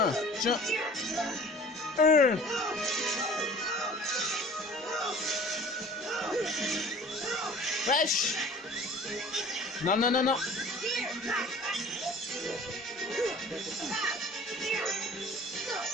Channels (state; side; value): normal; both; correlation 0.46